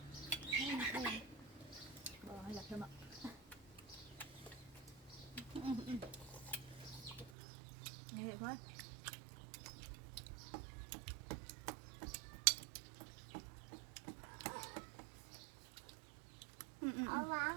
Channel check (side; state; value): left; drops out; at 7.3 s